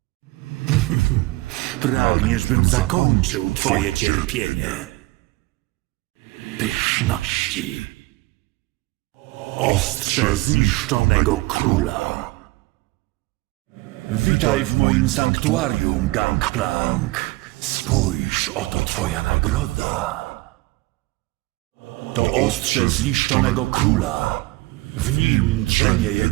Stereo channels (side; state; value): left; quieter; 21.7 dB